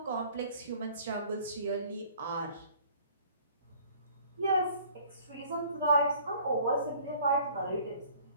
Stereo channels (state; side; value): inverted; both; correlation -0.53